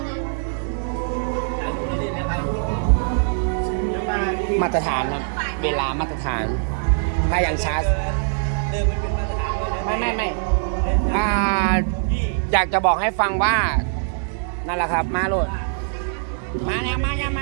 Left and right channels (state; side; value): silent; left; digital silence